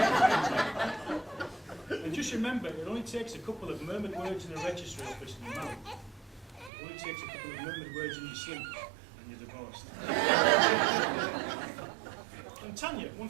And just remember, it only takes a couple of murmured words in a registry office and you're married. It only takes a couple of murmured words in your sleep and you're divorced. And Tanya, one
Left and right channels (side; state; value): left; drops out; at 6.7 s